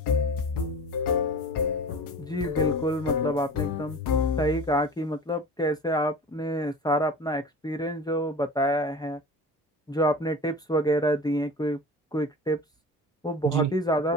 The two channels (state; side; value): normal; both; correlation 0.36